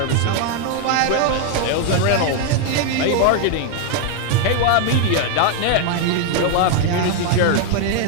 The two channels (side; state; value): both; different; correlation 0.01